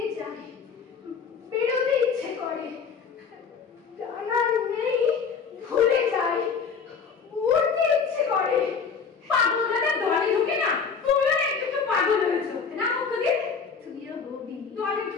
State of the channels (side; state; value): right; quieter; 5.8 dB